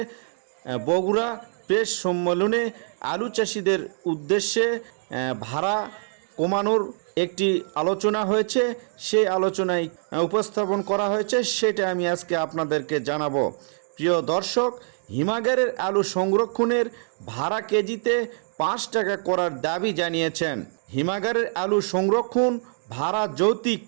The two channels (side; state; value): left; silent; digital silence